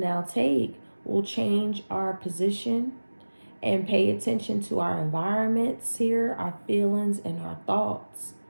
take will change our position and pay attention to our environments here, our feelings, and our thoughts.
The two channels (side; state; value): both; inverted; correlation -1.00